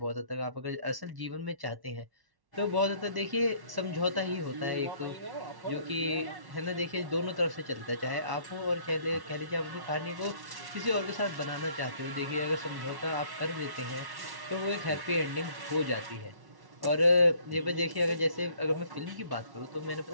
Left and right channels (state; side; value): late; left; 1.1 ms